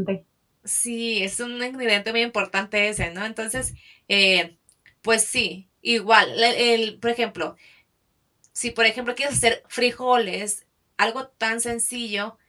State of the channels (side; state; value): both; identical; correlation 1.00